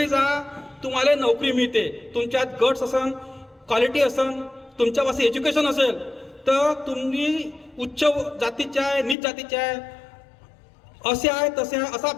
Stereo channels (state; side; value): drops out; right; at 9.2 s